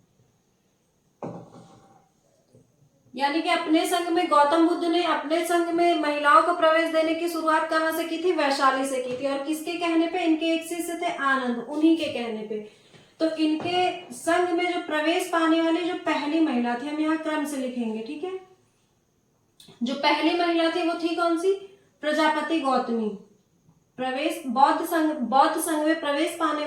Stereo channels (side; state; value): both; identical; correlation 1.00